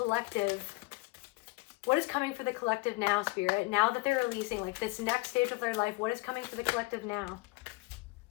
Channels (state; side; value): quieter; right; 23.9 dB